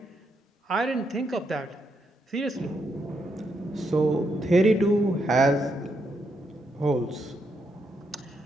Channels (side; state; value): both; normal; correlation 0.80